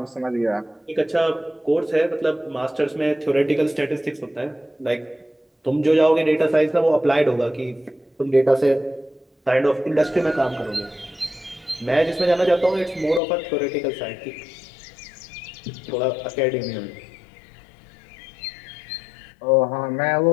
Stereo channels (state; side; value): drops out; right; at 13.2 s